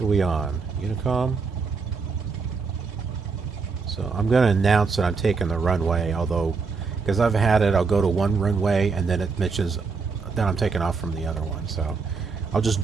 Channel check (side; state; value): left; quieter; 4.9 dB